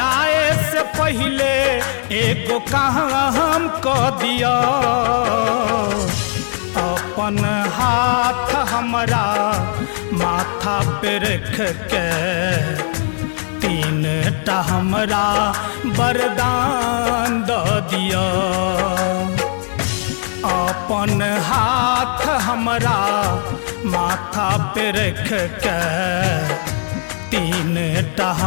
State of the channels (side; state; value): right; silent; 67 dB below the other